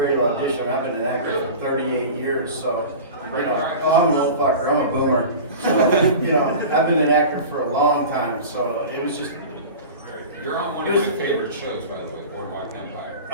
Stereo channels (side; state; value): both; inverted; correlation -0.34